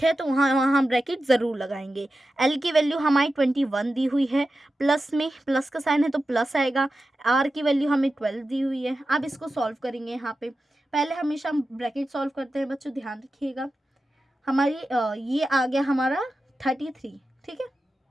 है तो वहाँ हम ब्रैकेट ज़रूर लगाएंगे। एल की वैल्यू हमारी 21 दी हुई है, प्लस में प्लस का साइन है तो प्लस आएगा। आर की वैल्यू हमें 12 दी हुई है। अब इसको सॉल्व करेंगे। यहाँ पे पहले हमेशा हम ब्रैकेट सॉल्व करते हैं बच्चों, ध्यान रखिएगा। हमारी ये आ गया हमारा 33। ठीक है,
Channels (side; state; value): both; normal; correlation 0.92